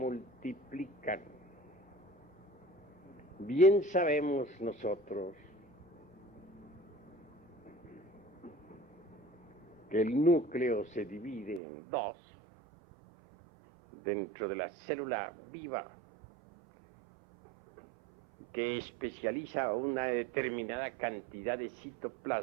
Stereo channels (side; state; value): left; drops out; at 11.6 s